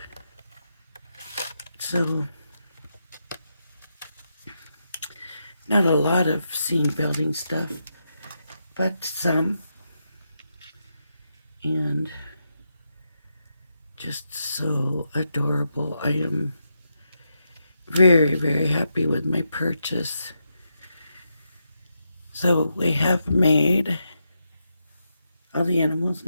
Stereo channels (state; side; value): inverted; both; correlation -0.84